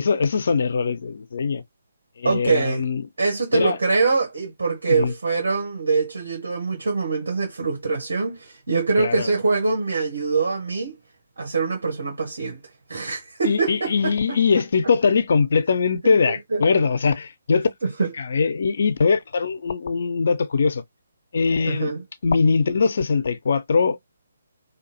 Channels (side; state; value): both; inverted; correlation -0.83